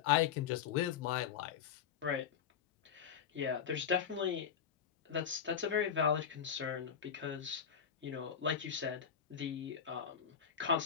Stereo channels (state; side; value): quieter; right; 7.9 dB